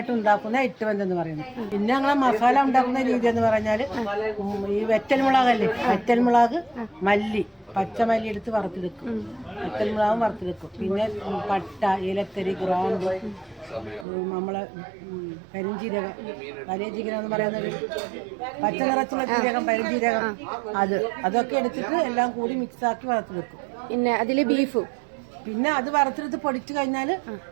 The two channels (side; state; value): left; drops out; at 14.1 s